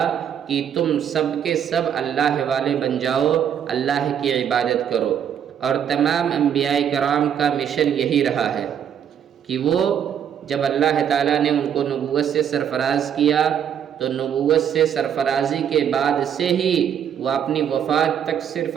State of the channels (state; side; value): quieter; left; 8.9 dB